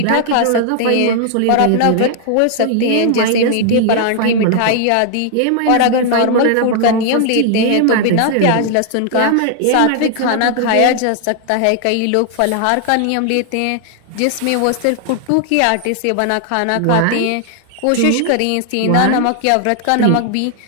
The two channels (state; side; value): different; both; correlation 0.00